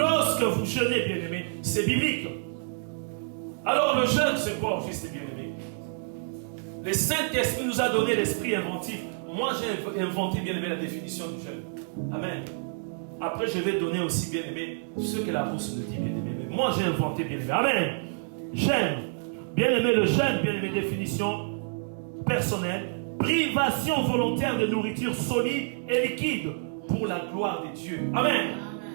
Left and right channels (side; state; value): left; silent; digital silence